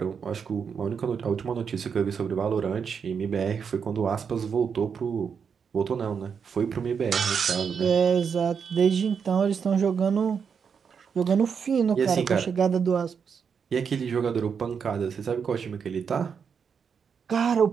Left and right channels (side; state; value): left; quieter; 6.6 dB